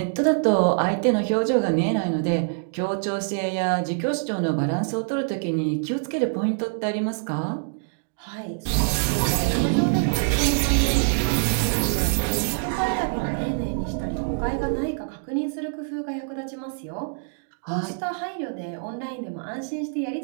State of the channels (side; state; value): left; silent; digital silence